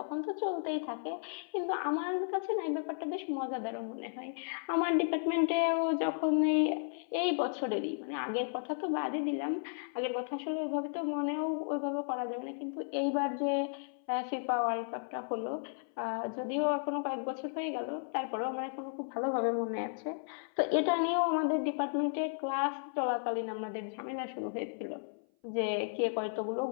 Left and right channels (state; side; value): silent; right; 55 dB below the other